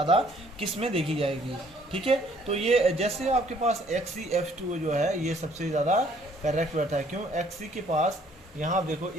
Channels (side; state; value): both; normal; correlation 0.62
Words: किस में देखी जाएगी। ठीक है, तो ये जैसे आपके पास XeF2 जो है ये सबसे ज़्यादा करेक्ट बैठता है। क्यों, Xe के पास यहाँ आप देखो